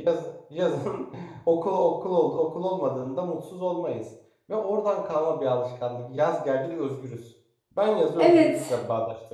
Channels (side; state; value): both; identical; correlation 1.00